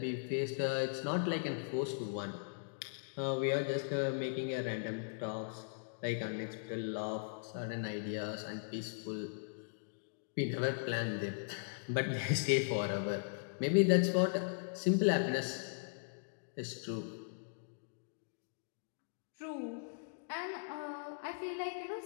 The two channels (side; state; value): right; silent; digital silence